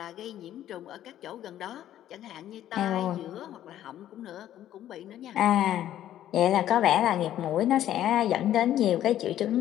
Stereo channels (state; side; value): quieter; right; 12.0 dB